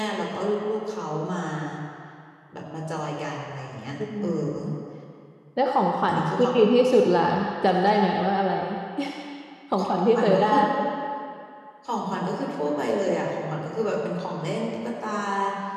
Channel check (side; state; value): both; identical; correlation 1.00